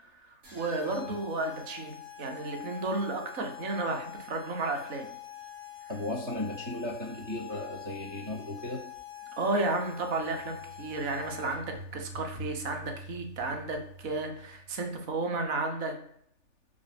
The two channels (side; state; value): left; late; 3.4 ms